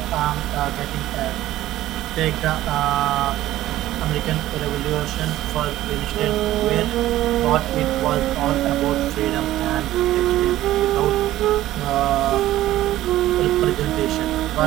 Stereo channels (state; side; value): quieter; left; 14.7 dB